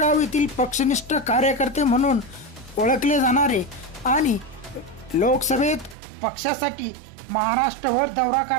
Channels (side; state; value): left; drops out; at 6.0 s